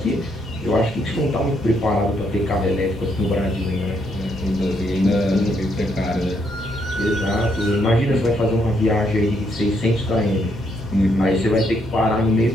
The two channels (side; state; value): both; normal; correlation 0.74